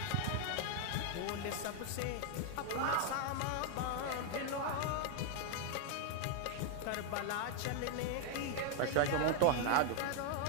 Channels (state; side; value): different; both; correlation 0.00